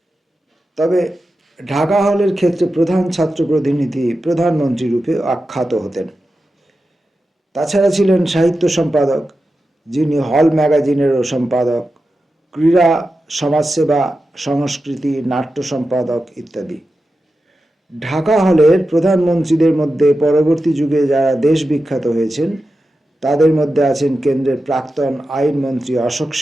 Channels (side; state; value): both; normal; correlation 0.91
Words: তবে ঢাকা হলের ক্ষেত্রে প্রধান ছাত্র প্রতিনিধি প্রধানমন্ত্রী রূপে আখ্যাত হতেন। তাছাড়া ছিলেন সাহিত্য সম্পাদক, যিনি হল ম্যাগাজিনেরও সম্পাদক, ক্রীড়া, সমাজসেবা, সংস্কৃতি, নাট্য সম্পাদক ইত্যাদি। ঢাকা হলের প্রধানমন্ত্রীদের মধ্যে পরবর্তী যুগে যারা দেশ বিখ্যাত হয়েছেন, তাদের মধ্যে আছেন কেন্দ্রের প্রাক্তন আইনমন্ত্রী অশোক